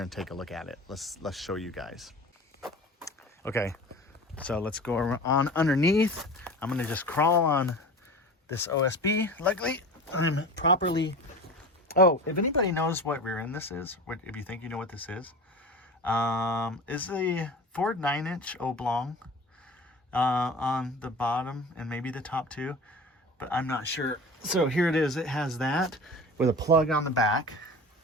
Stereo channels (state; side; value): normal; both; correlation 0.35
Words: and take a look at it. Let's show you guys. Okay, so let's go on underneath. I'm gonna just crawl on this OSB. Luckily, I'm properly. Oh, if anybody knows what rear end this is, if you think you know what this is the Ford 9-inch oblong on the bottom and maybe the top too, but I'm not sure. So here it is. It has that with a plug on the back.